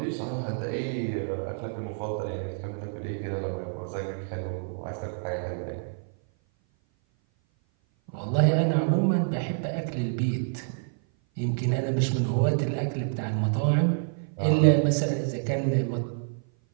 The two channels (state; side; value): silent; left; 56 dB below the other